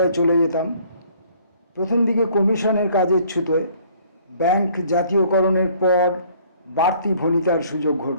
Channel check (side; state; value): both; inverted; correlation -0.58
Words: চলে যেতাম। প্রথম দিকে কমিশনের কাজের ছুতোয়, ব্যাংক জাতীয়করণের পর বাড়তি ভণিতার সুযোগ